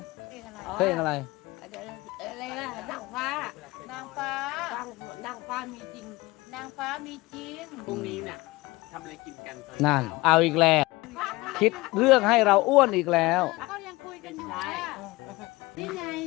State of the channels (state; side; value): quieter; right; 21.0 dB